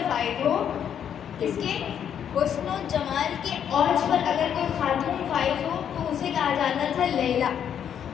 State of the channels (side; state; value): right; quieter; 8.8 dB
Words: فائز ہو، کس کے حسن و جمال کے اوج پر اگر کوئی خاتون فائز ہو تو اسے کہا جاتا تھا لیلہ،